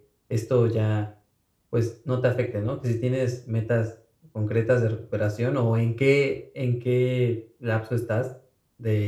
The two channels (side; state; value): both; identical; correlation 1.00